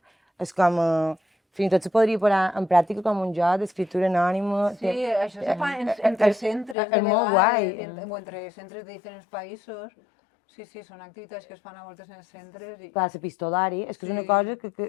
És com... Fins i tot se podria posar en pràctica com un joc d'escriptura anònima. Sí, això se fa entre centres de vegades, o entre centres de diferents països. Sí, són activitats que es fan a voltes en els centres. Clar, l'epistolari, és que és una cosa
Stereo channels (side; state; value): right; drops out; at 6.8 s